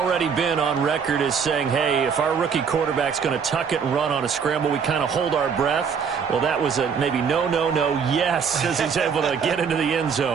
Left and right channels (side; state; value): left; quieter; 6.5 dB